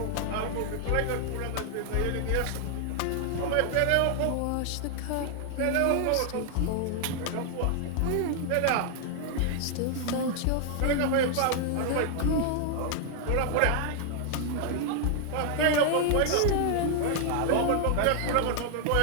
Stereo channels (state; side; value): different; both; correlation 0.00